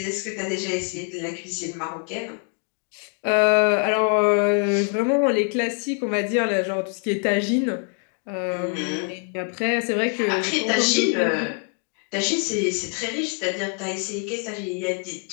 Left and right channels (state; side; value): quieter; right; 39.8 dB